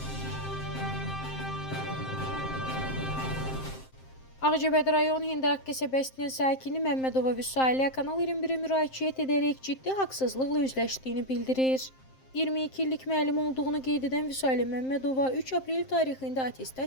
Ağcabədi rayon Hindaq qəsəbəsinin sakini Məmmədova Vüsaliyə Kanal 21-ə müraciət edərək ciddi haqsızlıqla üzləşdiyini bildirir. 22 illik müəllim olduğunu qeyd edən Vüsaliyə Məmmədova 3 aprel tarixində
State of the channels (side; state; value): right; late; 7.6 ms